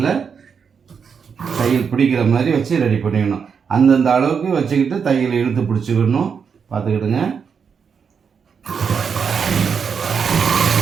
தையல் பிடிக்கிற மாதிரி வச்சு ரெடி பண்ணிக்கணும். அந்தந்த அளவுக்கு வச்சுக்கிட்டு தையல் இழுத்து பிடிச்சிக்கணும். பார்த்துக்கிடுங்க.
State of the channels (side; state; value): left; quieter; 6.4 dB